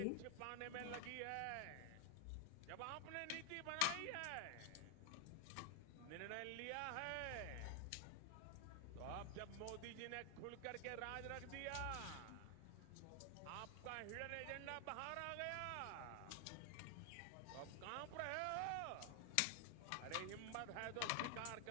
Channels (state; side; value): different; both; correlation 0.00